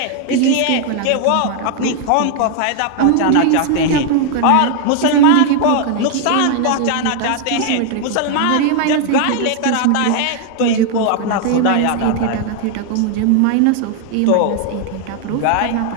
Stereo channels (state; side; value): different; both; correlation 0.00